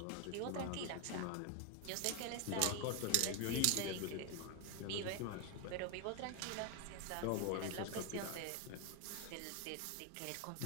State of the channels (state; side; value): different; both; correlation 0.01